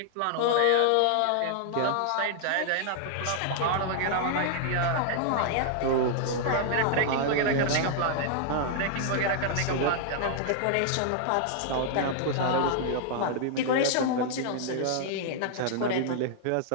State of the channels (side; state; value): both; different; correlation -0.01